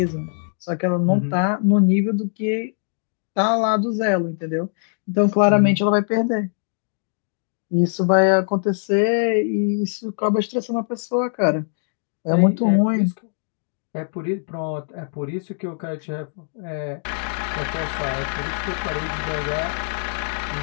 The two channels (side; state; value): right; silent; digital silence